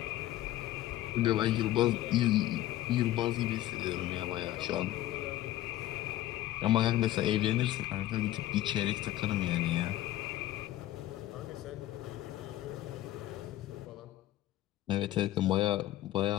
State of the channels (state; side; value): quieter; right; 14.3 dB